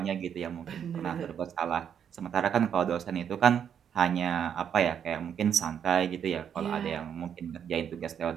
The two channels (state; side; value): quieter; left; 8.4 dB